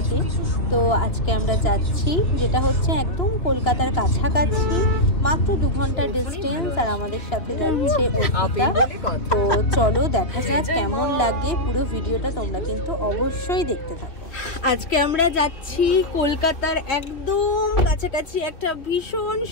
তো আজকে আমরা যাচ্ছি, যেটা হচ্ছে একদম কলকাতার কাছাকাছি, মাত্র 2 ঘন্টার ডিস্টেন্স। আর আমাদের সাথে যাচ্ছে অর্পিতা। তো চলো দেখা যাক কেমন লাগে, পুরো ভিডিওটা তোমরা কিন্তু অবশ্যই দেখতে থাকো। আজকে আমরা যাচ্ছি কলকাতার একদম কাছাকাছি একটা ভীষণ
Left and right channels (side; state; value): right; late; 2.8 ms